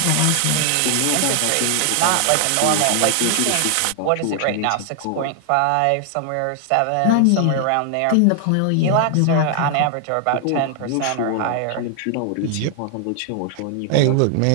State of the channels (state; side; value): different; both; correlation 0.00